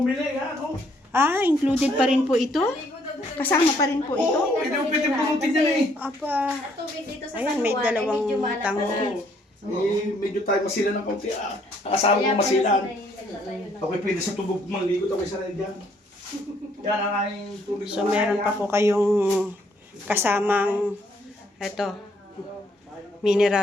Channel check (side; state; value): both; normal; correlation 0.67